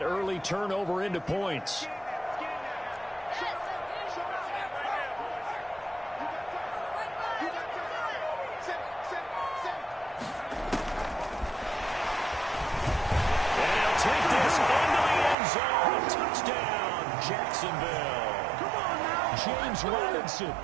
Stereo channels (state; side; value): drops out; left; at 15.4 s